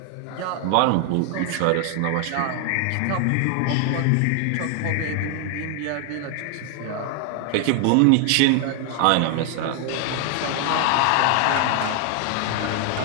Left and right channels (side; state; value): both; different; correlation 0.00